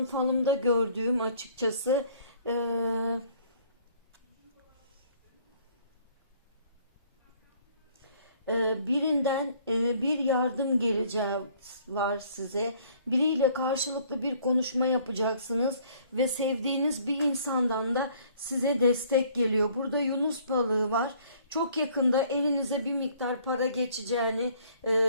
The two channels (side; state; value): both; inverted; correlation -0.59